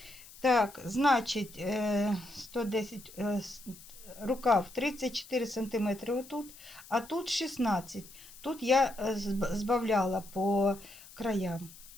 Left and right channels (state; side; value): noise; left; hiss, 19 dB below the sound